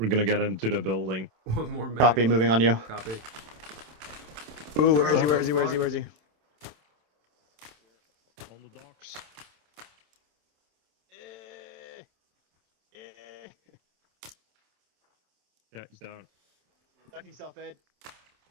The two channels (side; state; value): left; late; 27 ms